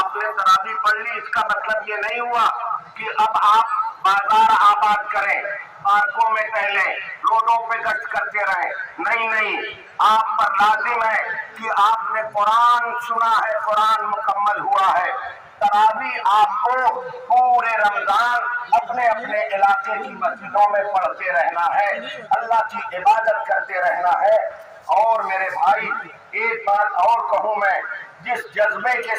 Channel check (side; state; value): both; identical; correlation 1.00